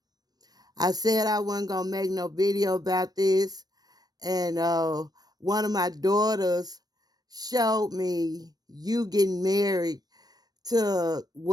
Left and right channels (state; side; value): late; left; 0.19 ms